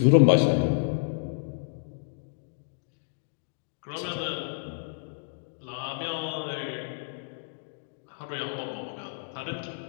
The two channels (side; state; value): right; silent; digital silence